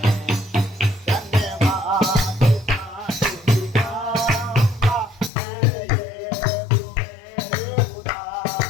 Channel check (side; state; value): right; drops out; at 5.3 s